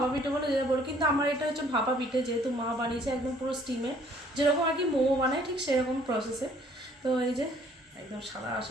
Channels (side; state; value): both; normal; correlation 0.59